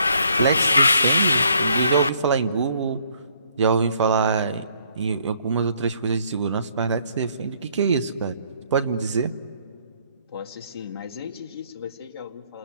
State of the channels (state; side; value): inverted; both; correlation -0.66